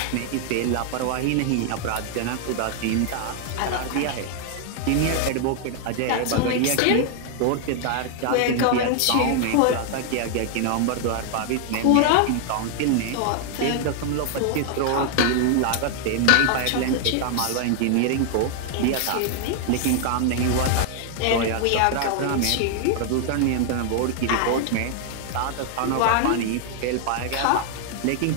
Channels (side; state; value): both; different; correlation 0.00